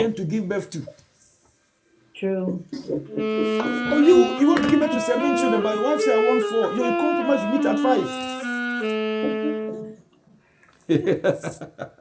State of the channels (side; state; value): both; identical; correlation 1.00